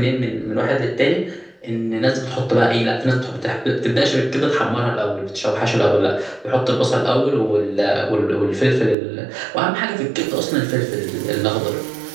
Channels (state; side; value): drops out; left; at 9.0 s